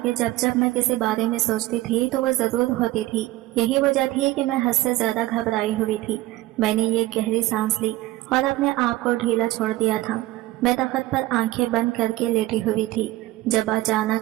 जब जब मैं किसी बारे में सोचती थी तो वह जरूर होती थी। यही वजह थी कि मैं हद से ज्यादा घबराई हुई थी। मैंने ये गहरी सांस ली और अपने आप को ढीला छोड़ दिया था। मैं तख्त पर आंखें बंद करके लेटी हुई थी जब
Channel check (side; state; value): left; quieter; 17.5 dB